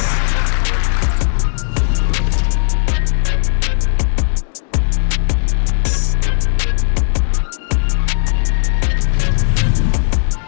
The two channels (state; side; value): silent; right; digital silence